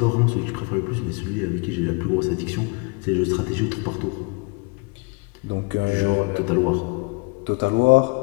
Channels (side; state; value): right; quieter; 29.4 dB